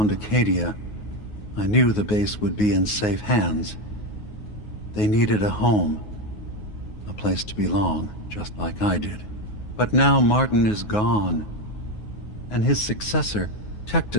Acadia, I knew the base would be in safe hands. They needed a home, a place to belong, just like I did. But now Martin is gone, and his successor,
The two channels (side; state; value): right; late; 9.5 ms